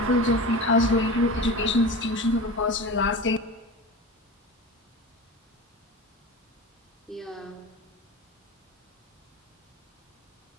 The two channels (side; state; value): both; normal; correlation 0.30